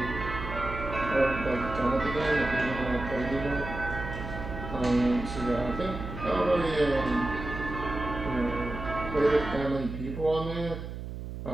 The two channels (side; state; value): right; noise; hum, 8 dB below the sound